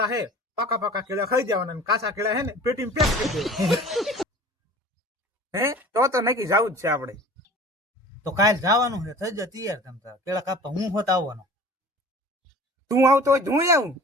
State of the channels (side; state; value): both; normal; correlation 0.43